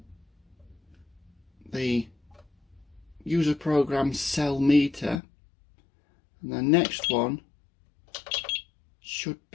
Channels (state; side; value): drops out; right; at 5.2 s